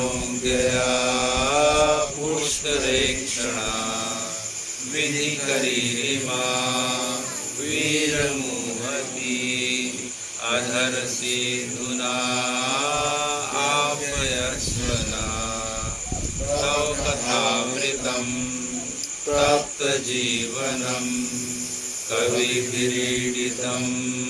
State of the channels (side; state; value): both; identical; correlation 1.00